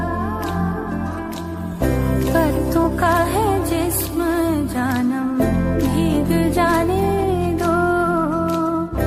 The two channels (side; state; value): both; identical; correlation 1.00